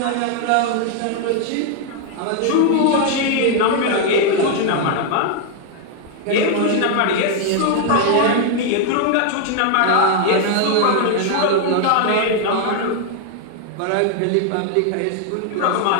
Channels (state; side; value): different; both; correlation 0.00